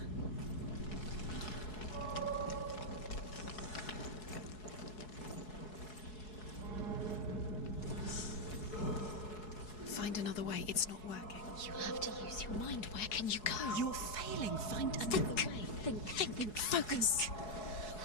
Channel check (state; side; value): late; right; 4.7 ms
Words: Find another way. It's not working. You have to use your mind. Where can you go? You're failing. Find another way. Think. Focus.